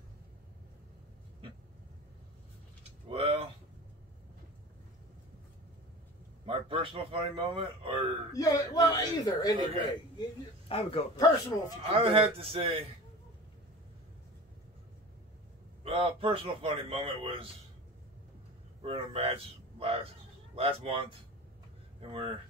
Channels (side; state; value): both; normal; correlation 0.35